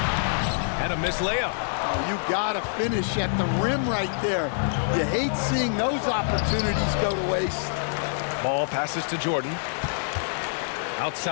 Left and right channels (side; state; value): right; silent; digital silence